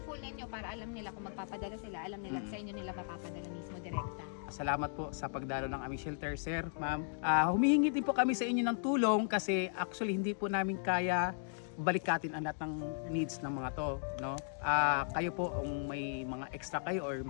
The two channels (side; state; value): right; silent; digital silence